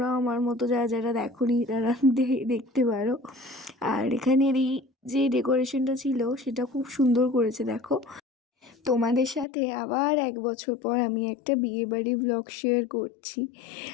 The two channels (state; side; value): drops out; right; at 9.5 s